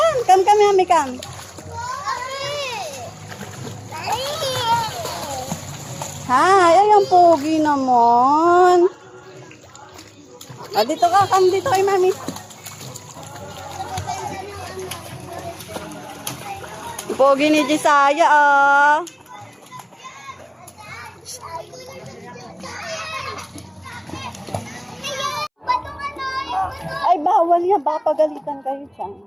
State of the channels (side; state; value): both; identical; correlation 1.00